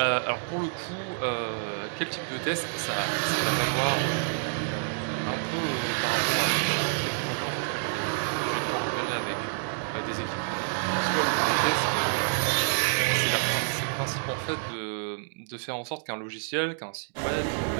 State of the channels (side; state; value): left; silent; digital silence